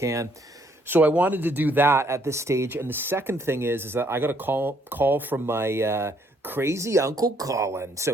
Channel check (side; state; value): both; normal; correlation 0.68